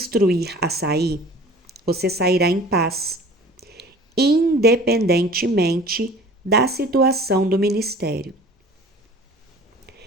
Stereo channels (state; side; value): normal; both; correlation 0.45